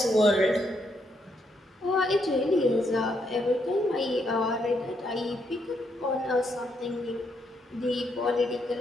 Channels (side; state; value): both; normal; correlation 0.76